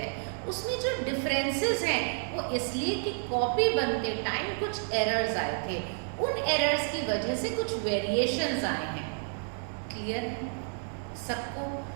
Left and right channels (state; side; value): silent; left; 58 dB below the other